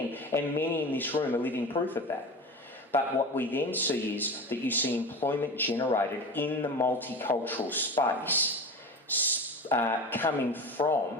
and many in this room are living proof of that. But what we then see is that you see employment generated in the multicultural space coming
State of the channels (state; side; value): normal; both; correlation 0.30